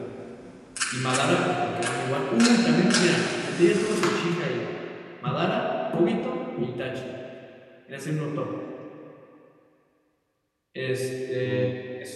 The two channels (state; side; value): identical; both; correlation 1.00